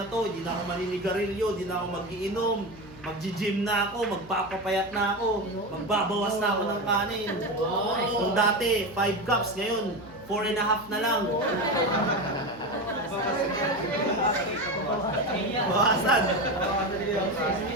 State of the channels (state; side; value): noise; left; hum, 20 dB below the sound